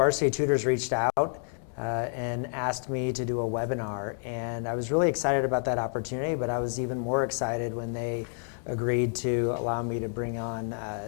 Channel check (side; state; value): right; silent; 59 dB below the other